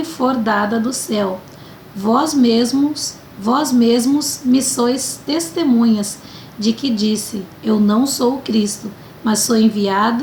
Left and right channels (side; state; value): both; identical; correlation 1.00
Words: for dada do céu. Vós mesmos me sois testemunhas de que disse: Eu não sou o Cristo, mas sou